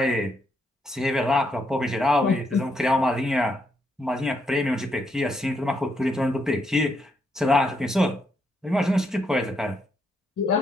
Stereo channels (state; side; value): normal; both; correlation 0.77